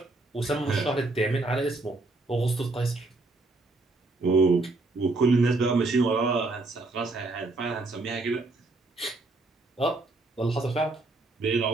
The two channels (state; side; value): quieter; left; 3.2 dB